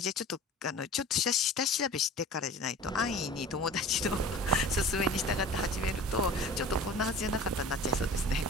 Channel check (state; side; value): normal; both; correlation 0.40